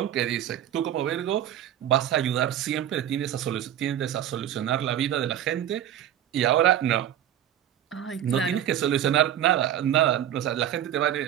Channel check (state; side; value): quieter; left; 11.0 dB